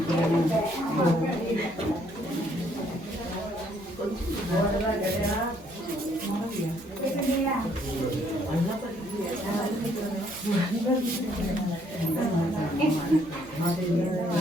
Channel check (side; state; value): both; normal; correlation 0.67